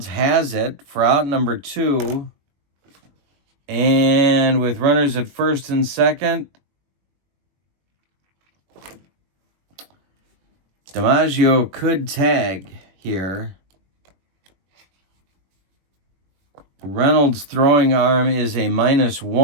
has it for out number 2. And with runners at first and second, DiMaggio could tag here. Reynolds' throwing arm is a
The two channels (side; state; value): left; late; 21 ms